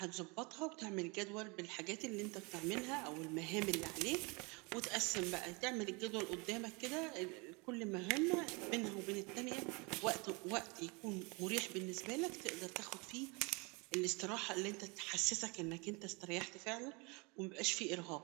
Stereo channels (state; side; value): quieter; left; 29.0 dB